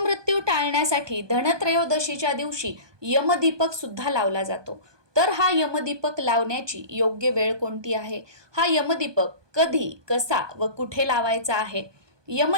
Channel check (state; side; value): late; left; 1.2 ms